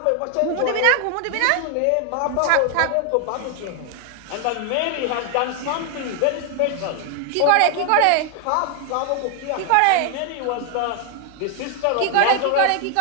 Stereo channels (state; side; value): different; both; correlation 0.00